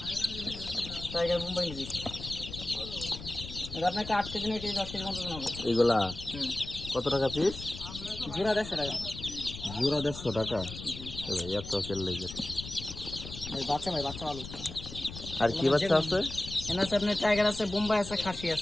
টাইগার মুম্বাই মুরগি। এটা আপনাকে 8 কেজি না কেজি 10 কেজি মতো হবে। এগুলা হুম। কত টাকা পিস? জোড়া 150 টাকা। জোড়া 150 টাকা। এত তেল লেগে। ভাই বাচ্চা ভালো। আর কি বাচ্চা আছে? এখানে আছে আপনার টাইগার আছে, বোম্বাই আছে, খাসি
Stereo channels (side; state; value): left; noise; rumble, 11 dB below the sound